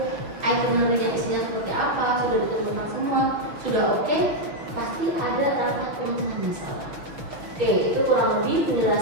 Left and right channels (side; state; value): left; late; 6.2 ms